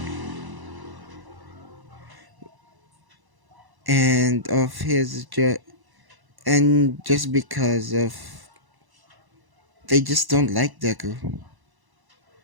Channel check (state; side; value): late; left; 1.0 ms